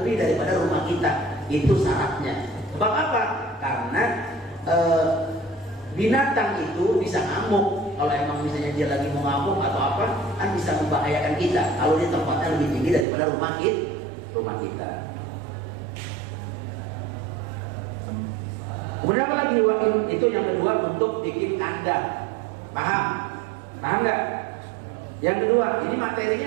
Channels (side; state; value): left; drops out; at 13.1 s